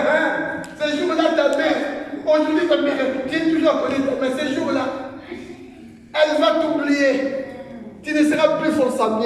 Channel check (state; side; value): identical; both; correlation 1.00